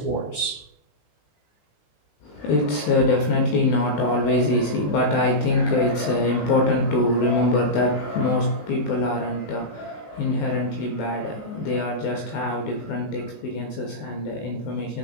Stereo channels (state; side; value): late; right; 19 ms